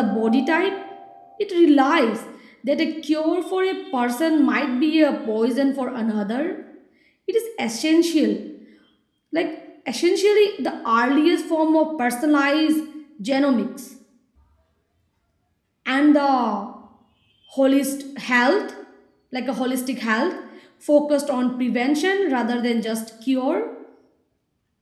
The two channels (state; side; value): identical; both; correlation 1.00